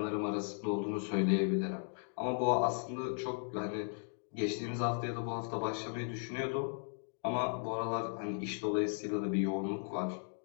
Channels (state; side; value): silent; right; digital silence